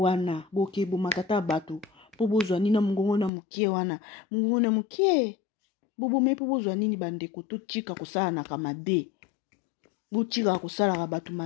boke, bo makata batu. Po bozwa nina mungongo na mukie wana. Mungongo na mukie. Bobo me po bozwa nini bandeko to chika kusala na kamabe. Bo chika kusala ka batu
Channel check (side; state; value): right; drops out; at 3.3 s